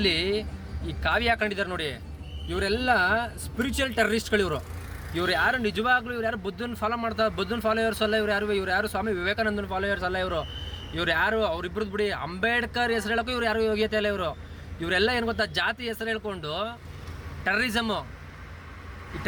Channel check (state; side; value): identical; both; correlation 1.00